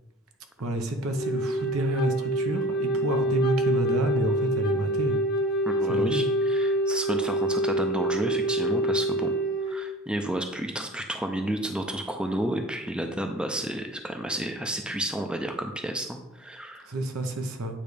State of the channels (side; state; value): both; normal; correlation 0.42